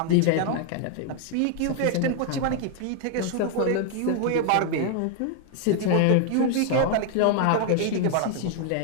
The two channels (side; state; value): both; different; correlation 0.00